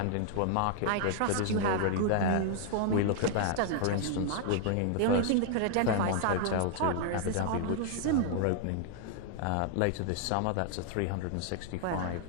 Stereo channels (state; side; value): different; both; correlation 0.00